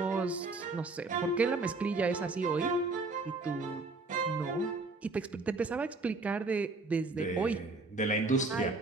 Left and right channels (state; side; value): quieter; left; 3.5 dB